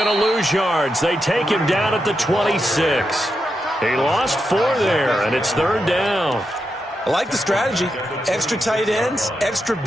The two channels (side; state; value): both; normal; correlation 0.86